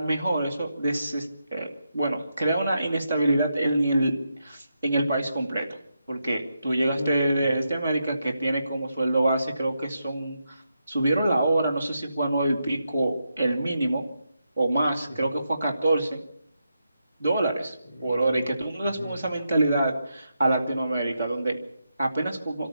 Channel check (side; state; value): both; inverted; correlation -0.84